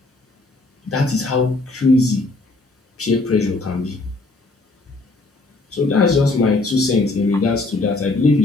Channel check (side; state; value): right; quieter; 3.1 dB